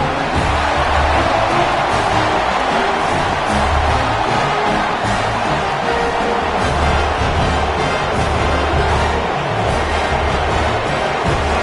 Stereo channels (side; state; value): both; identical; correlation 1.00